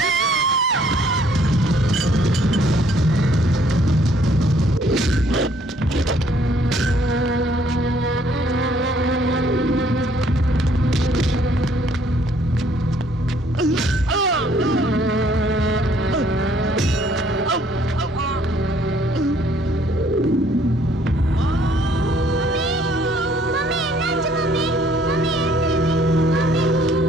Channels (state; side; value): normal; both; correlation 0.63